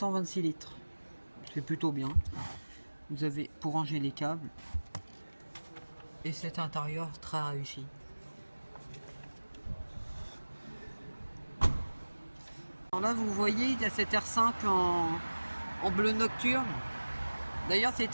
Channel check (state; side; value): inverted; both; correlation -1.00